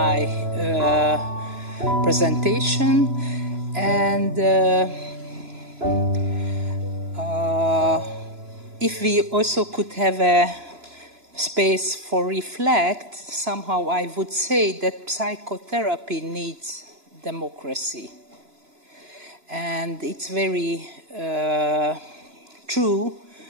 presentation. And if we also could have a space for reflect, somehow I would say that psychotherapy needs democracy. And it's very true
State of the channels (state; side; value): late; left; 2.9 ms